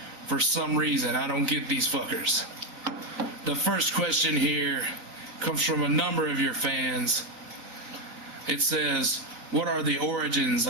For some reason, I don't get these fuckers. The first question here comes from a number of your fans. It says, what are the origins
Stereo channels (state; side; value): late; left; 4.0 ms